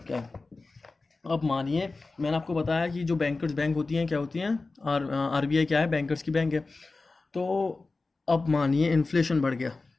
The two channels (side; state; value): right; quieter; 3.6 dB